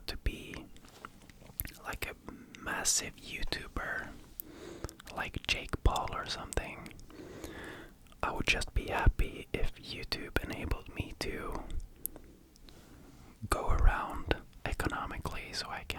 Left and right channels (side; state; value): both; identical; correlation 1.00